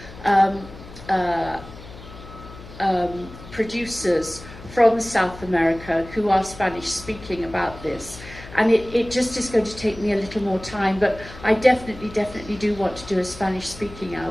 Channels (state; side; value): noise; left; hum, 16 dB below the sound